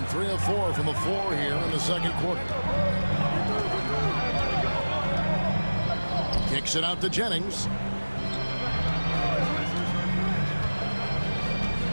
3 of 4 from the floor here in the second quarter. Kicks it out to Jennings.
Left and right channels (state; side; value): inverted; both; correlation -1.00